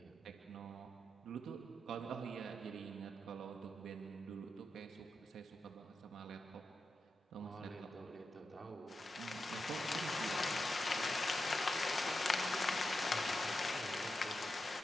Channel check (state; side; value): normal; both; correlation 0.89